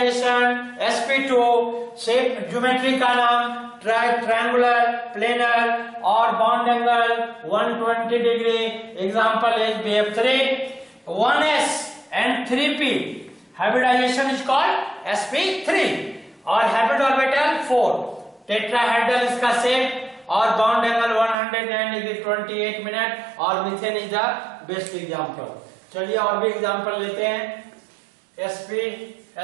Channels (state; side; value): drops out; left; at 21.4 s